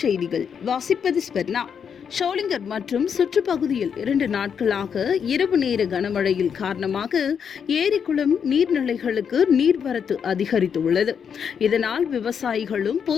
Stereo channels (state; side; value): quieter; right; 7.2 dB